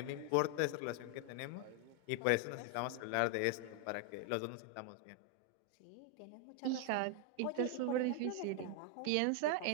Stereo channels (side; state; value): both; different; correlation 0.01